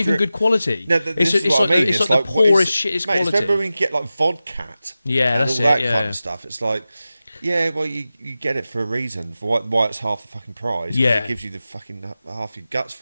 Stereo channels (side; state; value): both; inverted; correlation -0.94